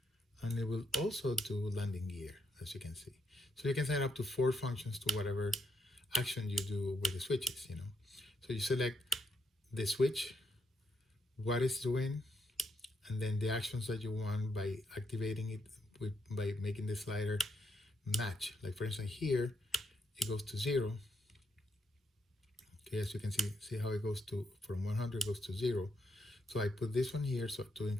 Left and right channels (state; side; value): normal; both; correlation 0.78